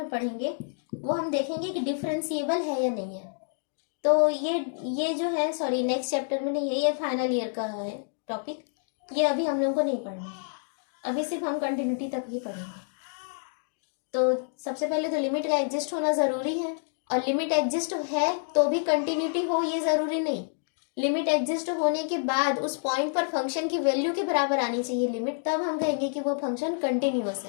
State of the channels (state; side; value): silent; right; digital silence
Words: पढ़ेंगे, वो हम देखेंगे कि डिफरेंशिएबल है या नहीं है। तो ये जो है, सॉरी नेक्स्ट चैप्टर में नहीं है, ये फाइनल ईयर का है टॉपिक, ये अभी हम लोग को नहीं पढ़ना है, अभी सिर्फ हम कंटिन्यूटी तक ही पढ़ेंगे। तो सबसे पहले तो लिमिट का एग्जिस्ट होना ज़रूरी है, और लिमिट एग्जिस्ट है तो भी कंटिन्यूटी हो ये ज़रूरी नहीं। लिमिट एग्जिस्ट होने के बाद उस पॉइंट पर फंक्शन की वैल्यू के बराबर आनी चाहिए लिमिट, तब हम कहेंगे कि वो फंक्शन कंटिन्यूअस